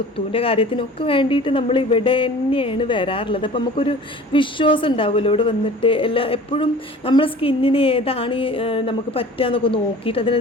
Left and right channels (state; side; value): normal; both; correlation 0.44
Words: കാര്യത്തിനൊക്കെ വേണ്ടിയിട്ട് നമ്മൾ ഇവിടെ തന്നെയാണ് വരാറുള്ളത്. അപ്പം നമുക്കൊരു വിശ്വാസം ഉണ്ടാവുമല്ലോ ഇവിടെ വന്നിട്ട്. എപ്പോഴും നമ്മളെ സ്കിന്നിന് ഏതാണ് നമുക്ക് പറ്റുക എന്നൊക്കെ നോക്കിയിട്ട്